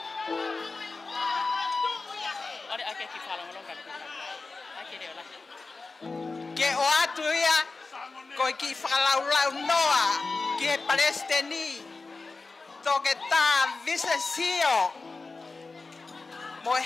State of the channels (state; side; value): quieter; right; 3.9 dB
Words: Ole ake ki whalonga longa. Ake reo la. Ke o atu ia ko e ki whakalaulau noa ki e Palestini. Toke tā visesio. Mo e